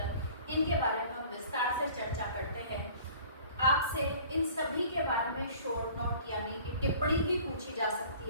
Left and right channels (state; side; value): inverted; both; correlation -0.49